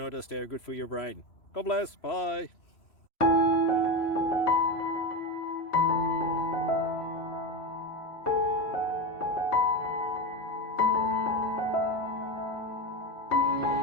they're good for your brain. God bless, bye!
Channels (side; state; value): right; late; 3.0 ms